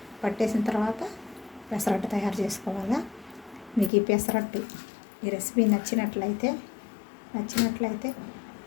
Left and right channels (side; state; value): right; drops out; at 3.9 s